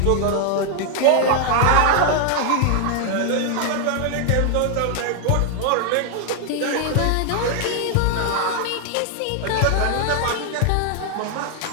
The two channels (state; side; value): different; both; correlation 0.00